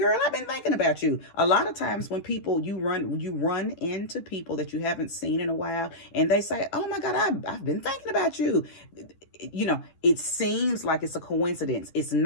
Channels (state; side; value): late; right; 11 ms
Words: I've been thinking about you. A lot of times when you run into people that you haven't seen in a while, and they say, oh my God, I've been thinking about you. You know, it seems like it's a coincidence. It's